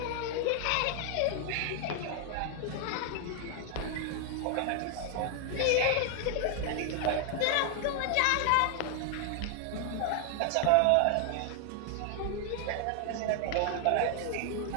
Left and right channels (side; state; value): both; different; correlation 0.00